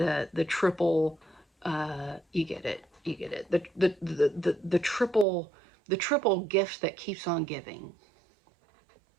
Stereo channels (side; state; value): left; drops out; at 5.2 s